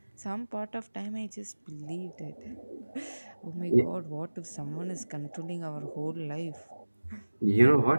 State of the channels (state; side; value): inverted; both; correlation -1.00